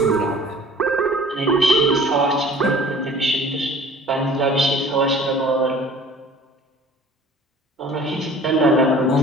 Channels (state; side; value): normal; both; correlation 0.48